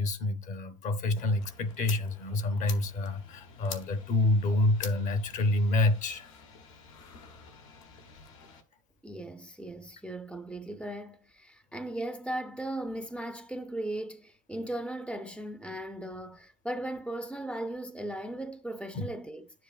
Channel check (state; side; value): normal; both; correlation 0.50